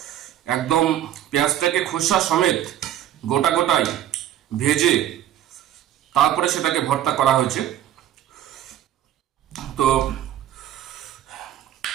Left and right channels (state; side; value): quieter; left; 11.8 dB